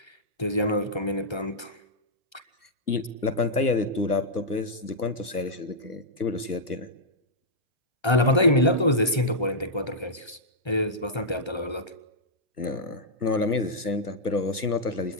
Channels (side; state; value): right; late; 1.3 ms